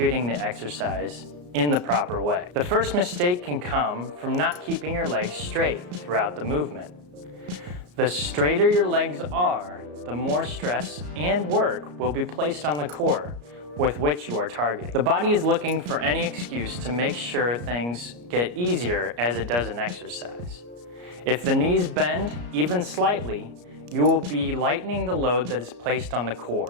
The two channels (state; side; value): late; left; 34 ms